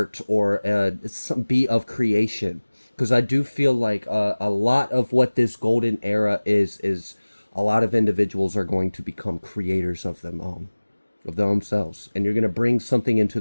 or be of creation. Because I do feel like a lot of what this golden era is a lot of individuals are going to become creators of themselves. And you're going to bring something into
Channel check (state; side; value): inverted; both; correlation -1.00